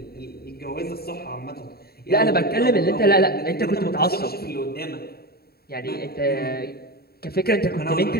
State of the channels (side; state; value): right; late; 0.45 ms